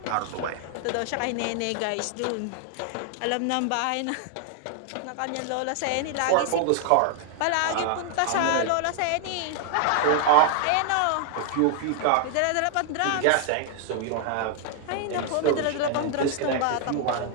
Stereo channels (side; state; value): both; different; correlation 0.00